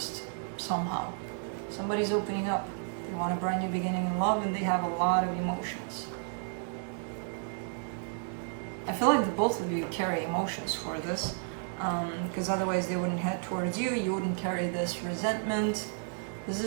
somehow. Somebody's opening up. They want a brand new beginning in love, and they have a lot of emotions. I feel like the both of you carry emotions for this, because otherwise they wouldn't head towards you. You wouldn't carry this resentment. This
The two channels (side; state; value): left; silent; 56 dB below the other